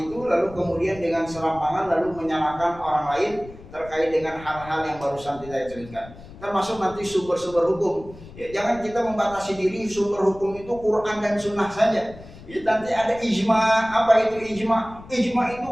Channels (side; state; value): left; noise; rumble, 18 dB below the sound